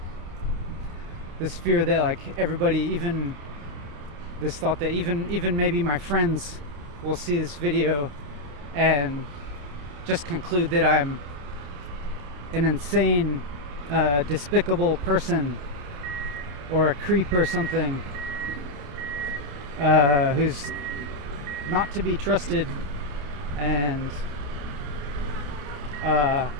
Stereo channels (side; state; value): left; late; 28 ms